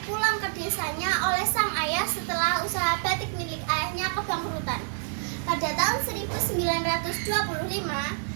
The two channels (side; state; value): left; silent; digital silence